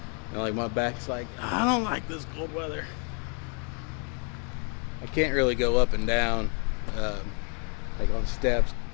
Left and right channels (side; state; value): right; quieter; 39.1 dB